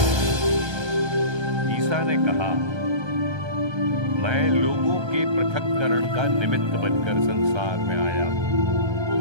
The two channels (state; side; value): late; left; 1.3 ms